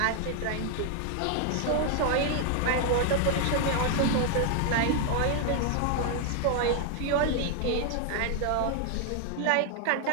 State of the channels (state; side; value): different; both; correlation 0.00